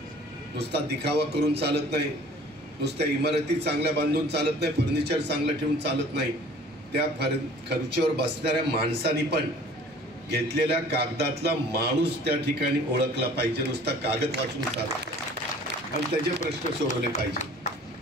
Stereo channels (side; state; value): both; normal; correlation 0.49